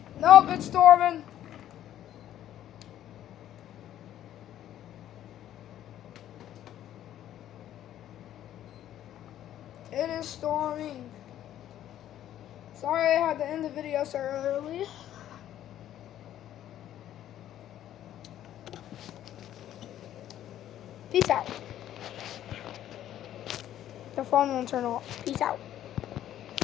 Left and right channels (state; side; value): quieter; right; 11.8 dB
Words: Nope, it's storming. It is storming. Sorry I had to end the video so early. Peace out. The phone won't turn off. Peace out.